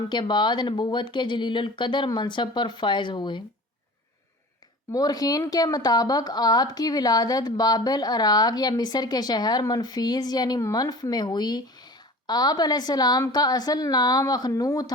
کے بعد نبوت کے جلیل القدر منصب پر فائز ہوئے۔ مورخین کے مطابق آپ کی ولادت بابل عراق یا مصر کے شہر منفیس یعنی منف میں ہوئی۔ آپ علیہ السلام کا اصل نام اخنو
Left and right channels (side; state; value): both; normal; correlation 0.40